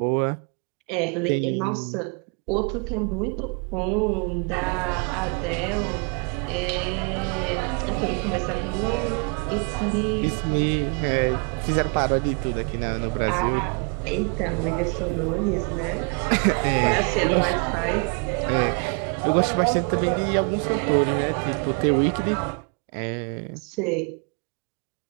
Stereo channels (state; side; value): quieter; left; 36.7 dB